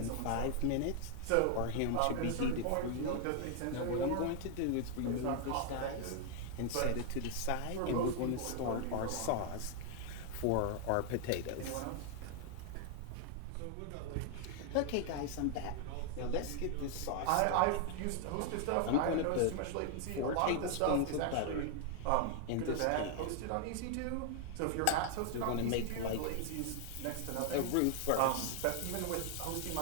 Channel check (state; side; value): different; both; correlation 0.00